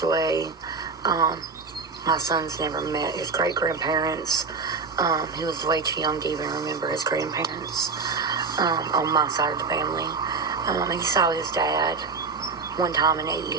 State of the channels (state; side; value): quieter; left; 4.6 dB